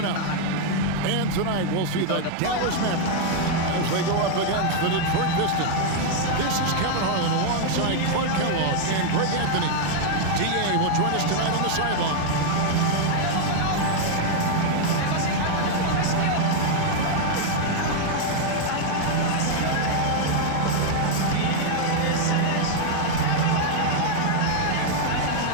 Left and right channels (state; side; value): different; both; correlation 0.00